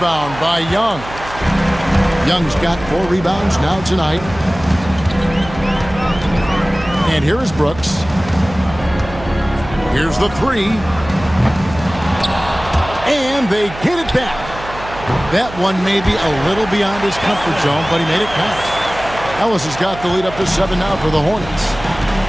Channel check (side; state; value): right; noise; hum, 14 dB below the sound